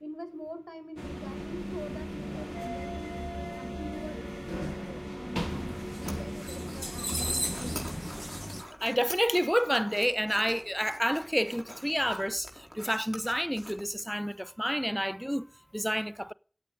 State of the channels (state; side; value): identical; both; correlation 1.00